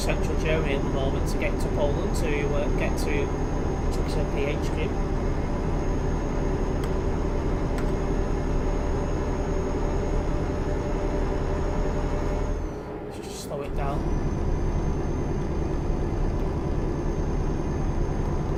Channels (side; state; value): both; identical; correlation 1.00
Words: Germany at the moment to get to Poland to get to truckers and PHQ. Down.